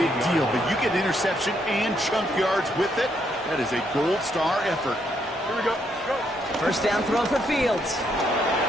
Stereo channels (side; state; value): both; normal; correlation 0.75